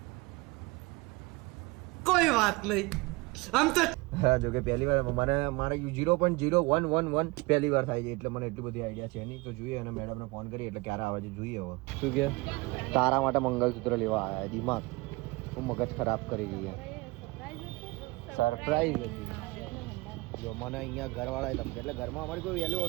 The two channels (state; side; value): quieter; left; 24.1 dB